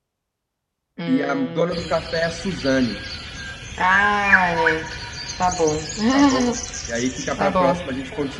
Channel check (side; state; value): both; identical; correlation 1.00